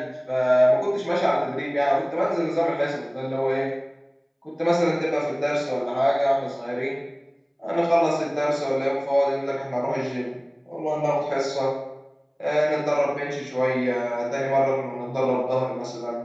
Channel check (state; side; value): identical; both; correlation 1.00